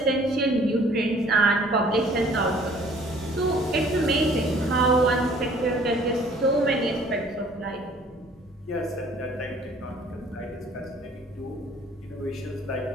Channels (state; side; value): normal; both; correlation 0.55